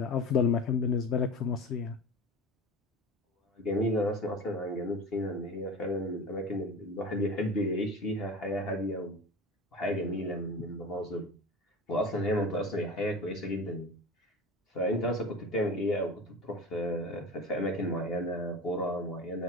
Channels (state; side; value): normal; both; correlation 0.32